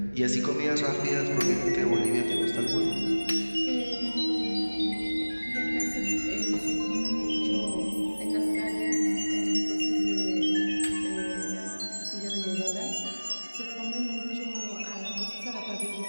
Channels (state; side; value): inverted; both; correlation -1.00